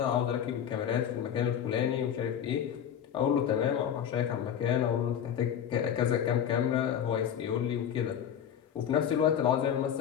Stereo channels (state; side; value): quieter; right; 9.0 dB